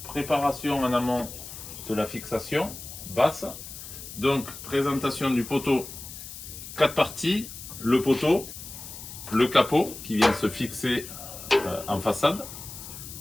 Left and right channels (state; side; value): noise; left; hiss, 12 dB below the sound